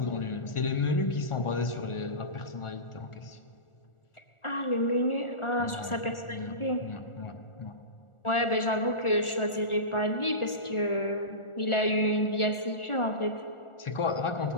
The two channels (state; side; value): late; right; 1.4 ms